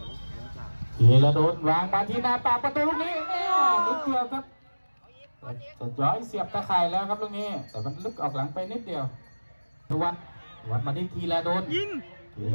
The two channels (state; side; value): inverted; both; correlation -1.00